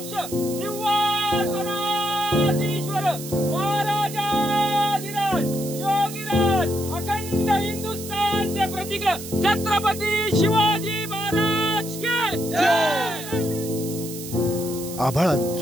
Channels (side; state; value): right; noise; hiss, 11 dB below the sound